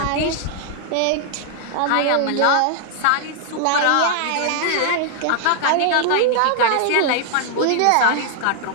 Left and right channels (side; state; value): both; different; correlation 0.00